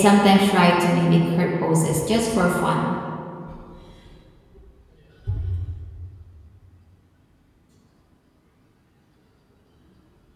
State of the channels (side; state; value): both; identical; correlation 1.00